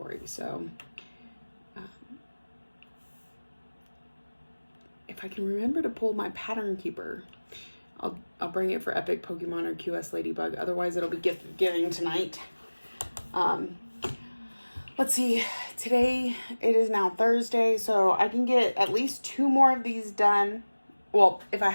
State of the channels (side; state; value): both; inverted; correlation -1.00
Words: So if I can remember to pull my pattern keeper, I'll bring it for Epic Pokemon or QS Ladybug. Otherwise, it'll be gift giving tonight. Let's see. Today, it is now Thursday, so I can get at least 2 more of these done. Well, if I